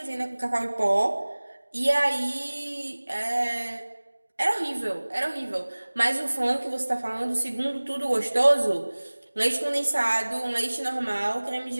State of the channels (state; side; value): inverted; both; correlation -1.00